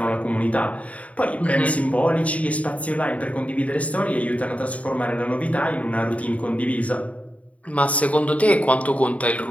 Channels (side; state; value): right; late; 0.067 ms